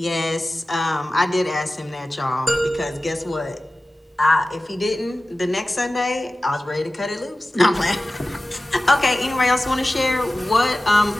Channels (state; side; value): normal; both; correlation 0.96